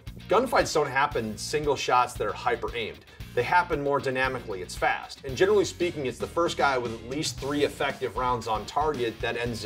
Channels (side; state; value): both; identical; correlation 1.00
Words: gunfights don't happen single shots that are hyper aimed. They happen more dynamically, it's fast. And generally speaking, it's the first guy with at least 3 effective rounds on target that ends